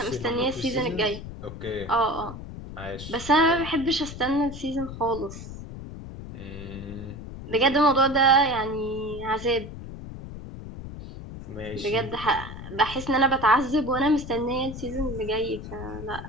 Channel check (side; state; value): left; noise; rumble, 11 dB below the sound